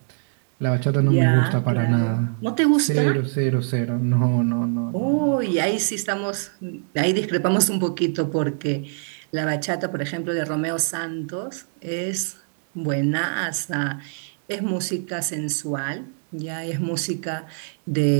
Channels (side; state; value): left; silent; digital silence